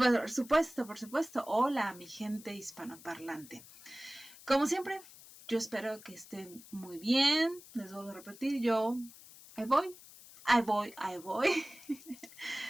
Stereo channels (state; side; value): noise; left; hiss, 19 dB below the sound